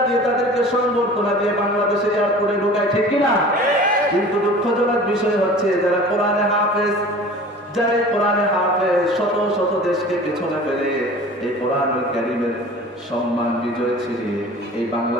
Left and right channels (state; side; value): normal; both; correlation 0.42